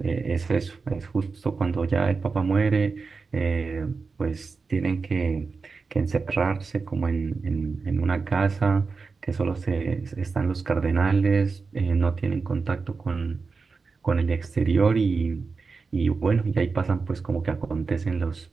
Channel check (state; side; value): quieter; left; 4.6 dB